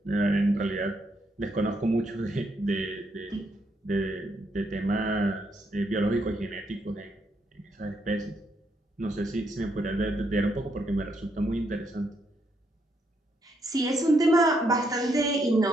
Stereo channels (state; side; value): normal; both; correlation 0.76